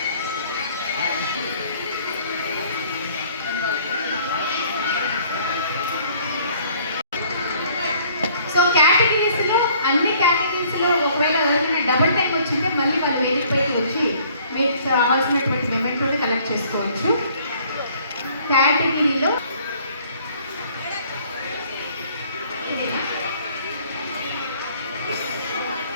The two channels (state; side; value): inverted; both; correlation -0.58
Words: సో కేటగిరీస్లో అన్ని కేటగిరీస్లో ఒకవేళ ఎవరైనా డబుల్ టైం వచ్చింటే మళ్ళీ వాళ్ళు వేదికపైకి వచ్చి మీకు రావాల్సినటువంటి మెమెంటోని కలెక్ట్ చేసుకోవచ్చు. కేటగిరీలో